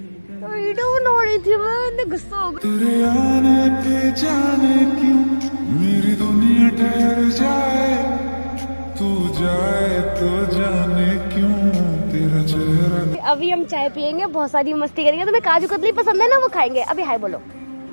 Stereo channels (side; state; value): both; inverted; correlation -1.00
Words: तो वीडियो बना रही थी मैं, गुस्सा हो गया। तेरे आने पे जाने क्यों मेरी दुनिया ठहर जाए, तू जाए तो जाने क्यों तेरा चेहरा। अभी हम चाय पियेंगे, बहुत सारी मस्ती करेंगे। तुम्हें काजू कतली पसंद है ना, वो खाएंगे। अभी हाय बोलो।